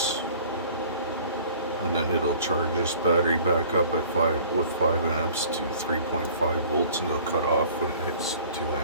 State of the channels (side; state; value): both; inverted; correlation -0.49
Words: And then it'll charge this battery back up at 5 amps to 3.5 volts, and it'll cut off when it hits 2